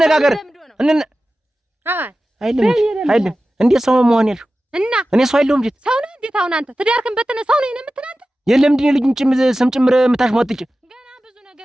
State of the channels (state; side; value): normal; both; correlation 0.95